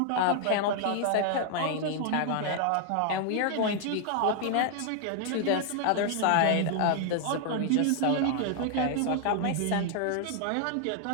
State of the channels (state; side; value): different; both; correlation 0.00